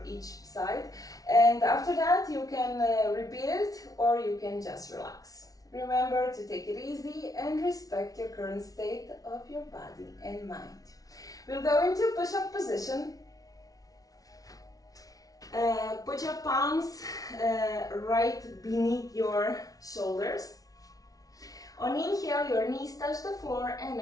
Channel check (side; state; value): right; late; 0.18 ms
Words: each side, and after that you can repeat it or you can just relax. Remember to take it easy and respect your current state of your body and mind. We'll go into push-up position. Put your palms right beneath your shoulders. On inhale, your knees touch the floor, and